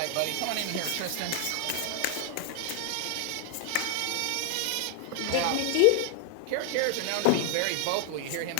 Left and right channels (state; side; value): different; both; correlation 0.00